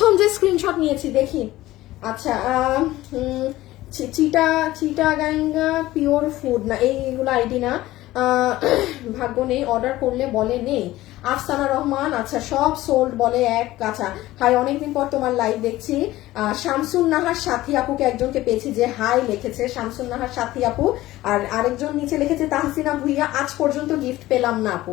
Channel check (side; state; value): right; quieter; 16.5 dB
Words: যে স্ক্রিনশট নিয়েছি দেখি। আচ্ছা চিটাগাঙ্গা পিওর ফুড না, এইগুলো আইডি না, ভাগ্য নেই, অর্ডার করলে বলে নেই। আফসানা রহমান, আচ্ছা সব সোল্ড বলে এক। আচ্ছা হাই, অনেকদিন পর তোমার লাইভ দেখছি। শামসুন নাহার সাথী আপুকে একজনকে পেয়েছি যে হাই লিখেছে, শামসুন নাহার সাথী আপু। আর আরেকজন নিচে লিখেছে তাহসিনা ভুইয়া, আজ পর্যন্ত গিফট পেলাম না